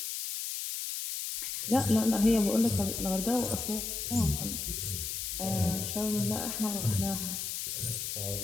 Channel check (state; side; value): noise; left; hiss, 4 dB below the sound